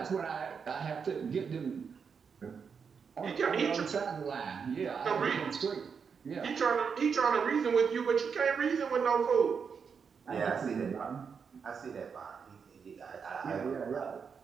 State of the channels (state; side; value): quieter; left; 6.2 dB